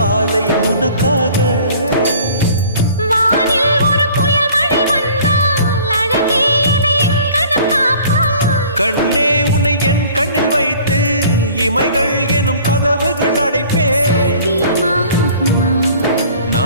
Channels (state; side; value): inverted; both; correlation -0.50